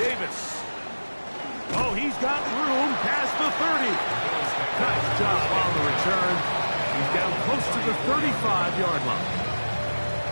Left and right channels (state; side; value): inverted; both; correlation -1.00